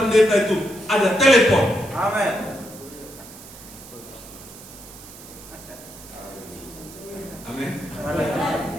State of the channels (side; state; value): right; noise; hiss, 17 dB below the sound